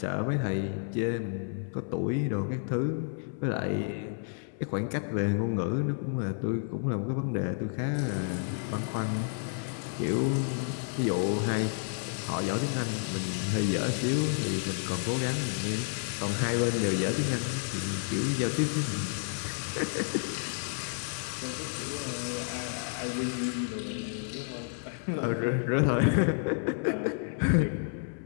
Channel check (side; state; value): right; silent; 57 dB below the other